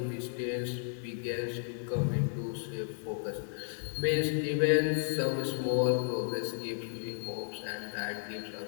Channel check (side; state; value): right; silent; digital silence